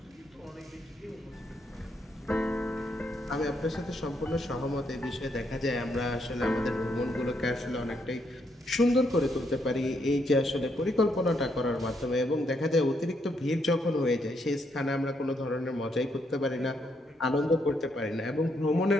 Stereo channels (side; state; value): both; normal; correlation 0.76